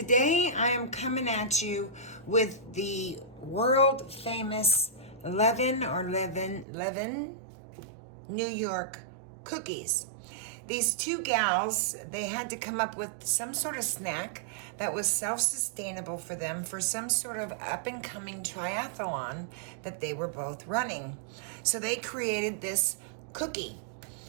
I am coming at you with the world famous Levine New York cookies. These two gals, they had to come up with some sort of snack that was self-sustainable for them for some sort of up-and-coming triathlon that they were both running. So they created this cookie,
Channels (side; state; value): left; drops out; at 6.7 s